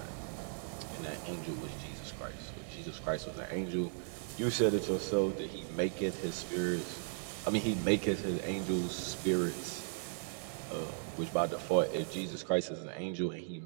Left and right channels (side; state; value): left; silent; digital silence